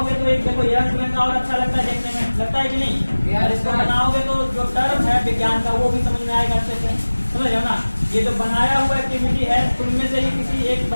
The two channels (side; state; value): both; inverted; correlation -1.00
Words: तो एक देखो यंग में और अच्छा लगता है देखने में, लगता है कि नहीं। और इसको बनाओगे तो जो टर्म है विज्ञान का वो भी समझ में आएगा अच्छे से, समझ रहे हो ना। ये जो बनाया हुआ एक्टिविटी है, तुममें से ही किसी एक